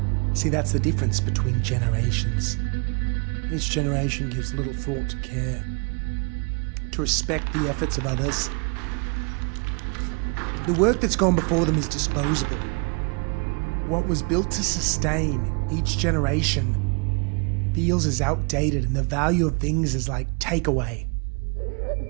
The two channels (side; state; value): left; quieter; 33.8 dB